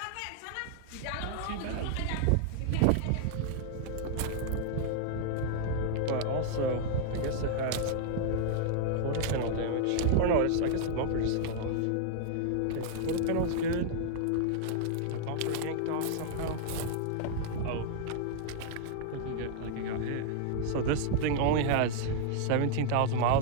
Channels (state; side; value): different; both; correlation -0.01